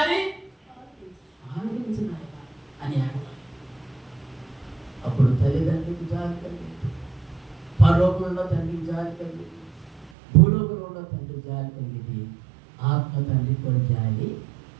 ఆలకించు అని అడగాలి. అప్పుడు తల్లిదండ్రులకు జాలి కలిగింది, పరలోకంలో తండ్రికి జాలి కలిగింది, భూలోకంలో తండ్రి జాలి కలిగింది, ఆత్మ తండ్రి కూడా జాలి.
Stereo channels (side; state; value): left; drops out; at 10.1 s